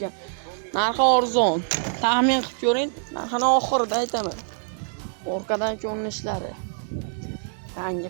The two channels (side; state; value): left; silent; digital silence